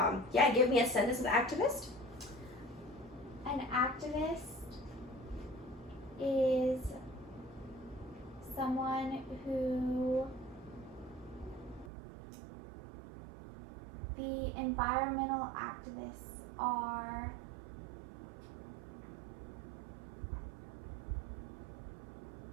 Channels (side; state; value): left; drops out; at 11.9 s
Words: give me a sentence with activist? An activist is someone who the environmental activists are